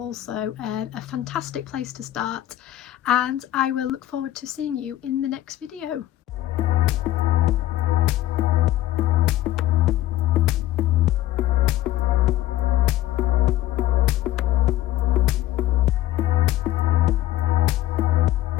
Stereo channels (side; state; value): right; quieter; 14.3 dB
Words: a fantastic place to start. And I will look forward to seeing you in the next video.